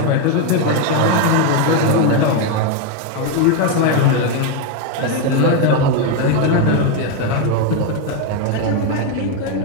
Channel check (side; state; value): both; different; correlation 0.02